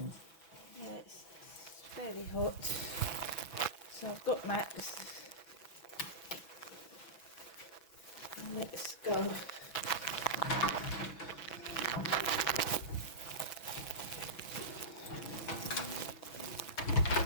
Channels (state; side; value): late; right; 6.0 ms